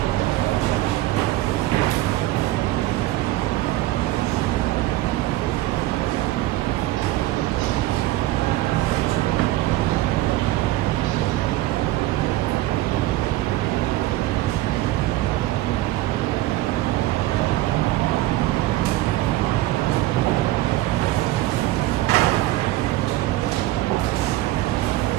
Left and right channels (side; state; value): left; quieter; 16.4 dB